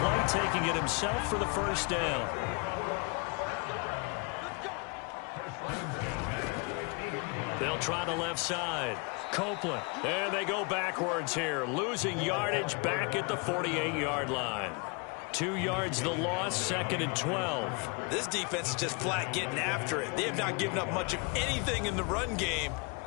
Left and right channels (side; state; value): right; quieter; 32.2 dB